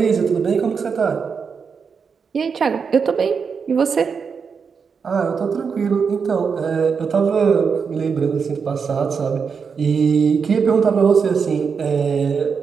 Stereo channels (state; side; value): quieter; left; 5.9 dB